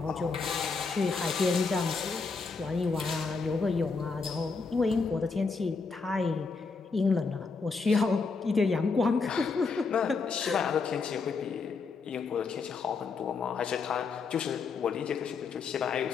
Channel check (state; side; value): quieter; right; 4.6 dB